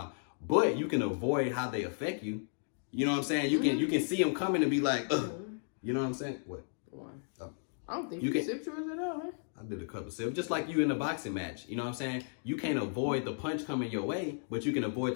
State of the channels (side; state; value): right; silent; digital silence